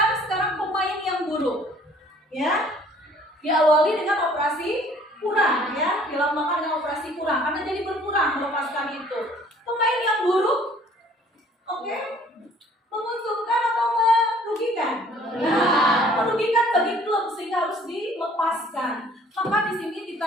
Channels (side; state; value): both; normal; correlation 0.56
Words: sekarang pemain yang buruk, ya, diawali dengan operasi kurang, ya, dilambangkan dengan operasi kurang karena jadi berkurang melepaskan itu. Pemain yang buruk, oke, menguntungkan atau merugikan? Nah, merugikan bagi klub sehingga harus dilepaskan. Maka di sini